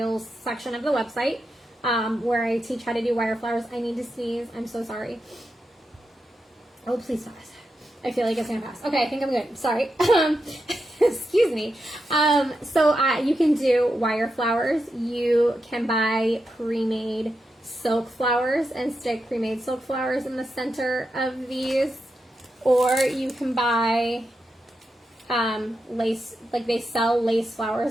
section of the website, where I teach how to do wire flowers. I need to sneeze. I'm so sorry. Oh, please stop it. I feel like it's going to pass. Okay, I think I'm good. Sorry. Excuse me. So you can do wire flowers. You can buy pre-made silk flowers and stick pre-made silk flowers in the center of these. Or you can buy lace, like they sell lace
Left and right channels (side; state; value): both; normal; correlation 0.87